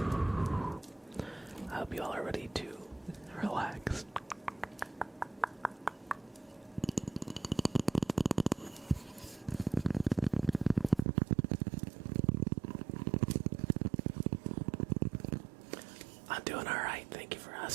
I hope you all are ready to relax. I'm doing alright, thank you for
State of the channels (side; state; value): left; drops out; at 11.1 s